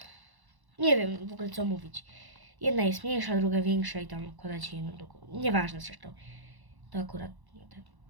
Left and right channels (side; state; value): left; late; 1.1 ms